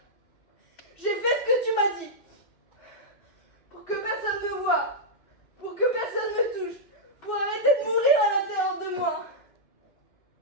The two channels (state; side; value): late; right; 2.1 ms